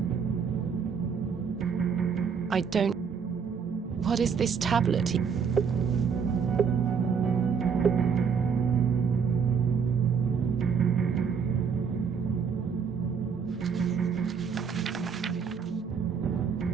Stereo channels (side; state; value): left; quieter; 6.4 dB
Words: I don't... What is this tablet?